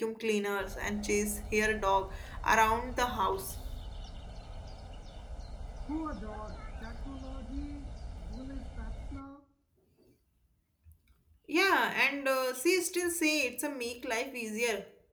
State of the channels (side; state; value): both; identical; correlation 1.00